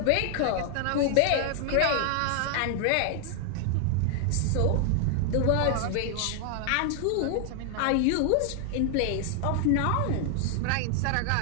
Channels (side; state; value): both; different; correlation 0.00